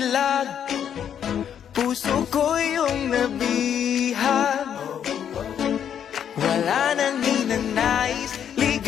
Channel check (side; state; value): right; quieter; 8.9 dB